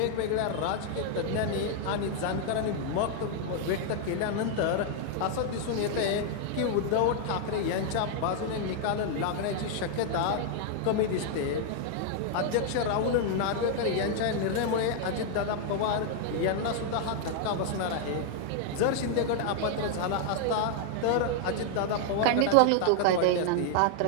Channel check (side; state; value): both; different; correlation 0.00